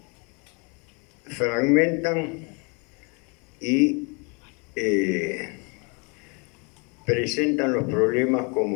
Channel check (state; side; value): quieter; right; 32.5 dB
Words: fragmentan y presentan los problemas